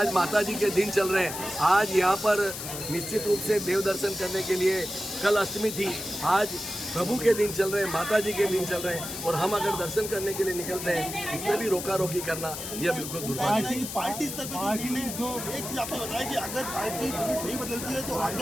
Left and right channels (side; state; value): left; noise; hiss, 7 dB below the sound